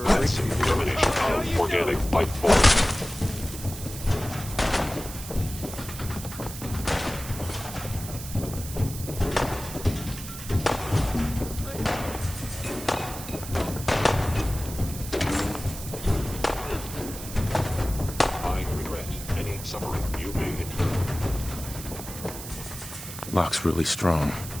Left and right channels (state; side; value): noise; right; hiss, 11 dB below the sound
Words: That's elimination of organic life form. I regret any suffering you may incur. Lock's really strong.